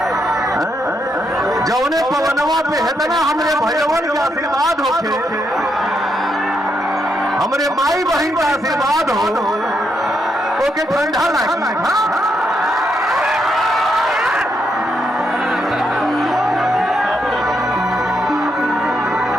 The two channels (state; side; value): normal; both; correlation 0.79